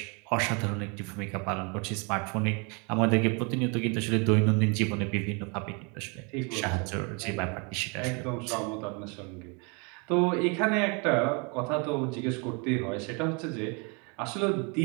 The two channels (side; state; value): left; quieter; 32.8 dB